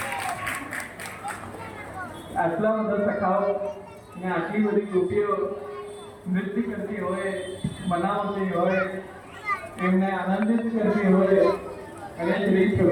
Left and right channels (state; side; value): identical; both; correlation 1.00